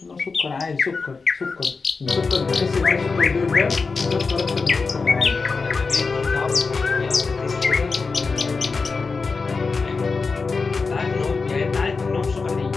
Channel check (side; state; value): right; quieter; 4.4 dB